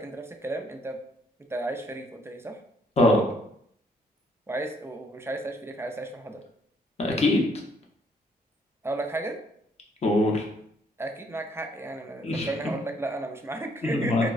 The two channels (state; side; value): normal; both; correlation 0.67